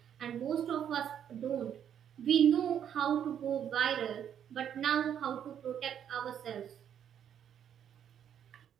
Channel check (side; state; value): left; quieter; 9.2 dB